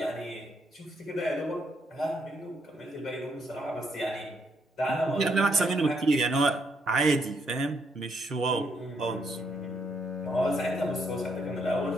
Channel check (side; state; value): both; normal; correlation 0.74